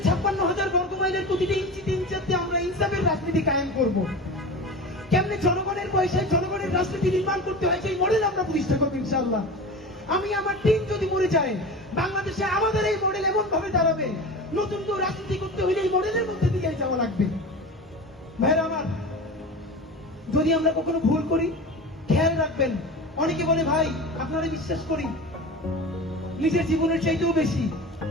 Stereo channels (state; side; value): normal; both; correlation 0.31